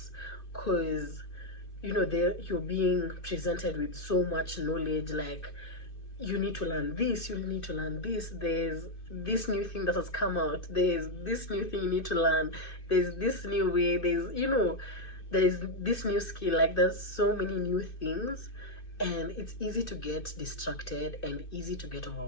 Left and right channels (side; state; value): right; late; 2.6 ms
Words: because you're being presented with so much knowledge. Like, you need to learn this, you need to learn this, there's this new thing that has come out, there's this new thing you need to learn, there's this new way, there's there's this new skill, like there's so many new things, and it's easy to get distracted and easy to get